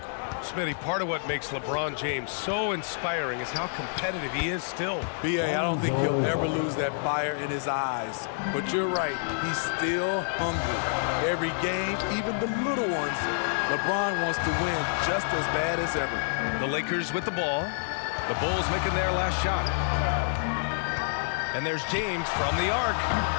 Smitty, part of what makes LeBron James so inspiring is how competitive he is still. B.A., I don't think he'll ever lose that fire in his eyes. But you're right, he's still hungry. Every game, even the little ones, LeBron wants to win just as bad as ever. The Lakers with the ball. The Bulls making their last shot. And there's James from the arc.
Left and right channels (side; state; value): right; silent; digital silence